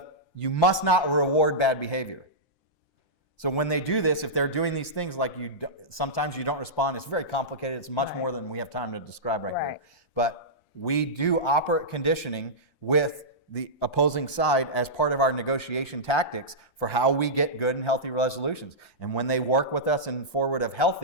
you must not reward bad behavior. So when they do this, if they're doing these things, like sometimes you don't respond, it's very complicated. It's much more than we have time to describe right here. But we do operate conditioning with the opposing side as part of our negotiation tactics for how we get good and healthy resolutions. And when they work with us in forward of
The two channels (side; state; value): right; late; 5.8 ms